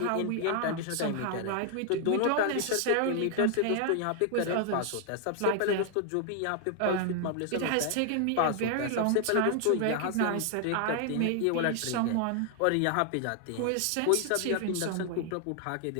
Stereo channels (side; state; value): both; different; correlation 0.00